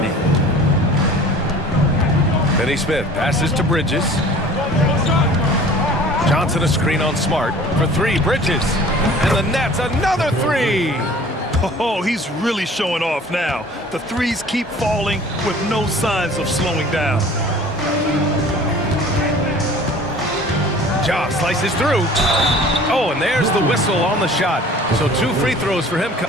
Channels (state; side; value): normal; both; correlation 0.46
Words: Finney Smith passes to Bridges. Johnson a screen on Smart for three. Bridges. And the Nets another three. Oh, he's really showing off now. The threes keep falling with no signs of slowing down. Ja slices through. Oh, and there's the whistle on the shot. So 2 free throws for him.